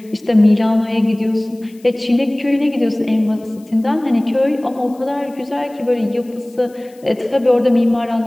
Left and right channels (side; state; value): left; noise; hiss, 29 dB below the sound